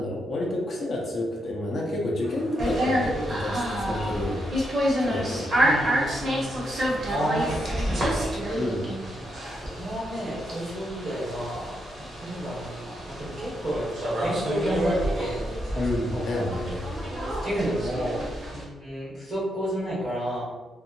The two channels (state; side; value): normal; both; correlation 0.81